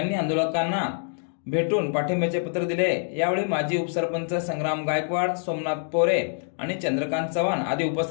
आंदोलकांना भेटून पाठिंब्याचे पत्र दिले। यावेळी माजी उपसरपंच संग्राम गायकवाड, सोमनाथ पोरे आणि चंद्रकांत चव्हाण आदी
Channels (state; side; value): silent; right; 60 dB below the other